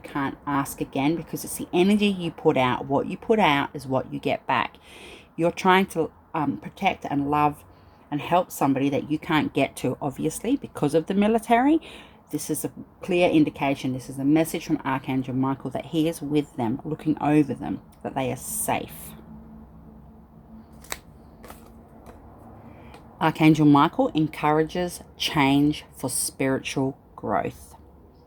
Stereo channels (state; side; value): identical; both; correlation 1.00